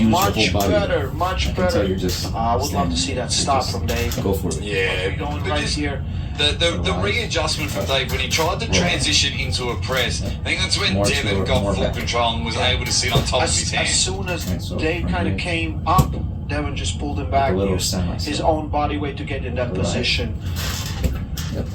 Much whole body. better, much Until better. you're just I would love to standing. see that You stop just from Dave. Go for it. yeah. Going but right just here. the readjustment from Dave when he tried to transition into a press, I think that's when More Devin slower, got more full back. control and was able to sit on top of his As hand. soon as Right, so Dave from kind of here. came up, Devin just pulled him back, a little used his semi-step. own body weight to get in that Right. position. Yep.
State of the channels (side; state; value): both; identical; correlation 1.00